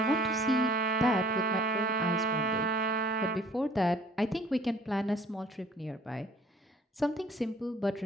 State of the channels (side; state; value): both; normal; correlation 0.54